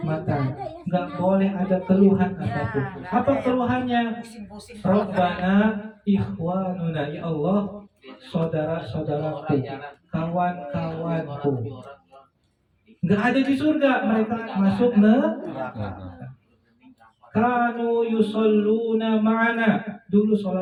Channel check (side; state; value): both; identical; correlation 1.00